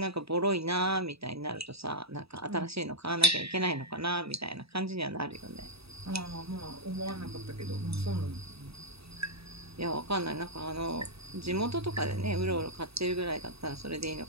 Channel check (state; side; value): late; left; 0.77 ms